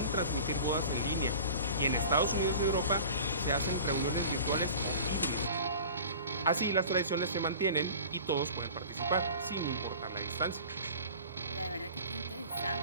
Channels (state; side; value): inverted; both; correlation -0.40